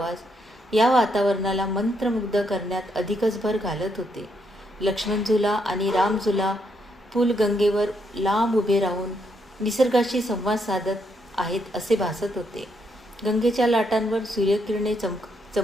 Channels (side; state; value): both; normal; correlation 0.76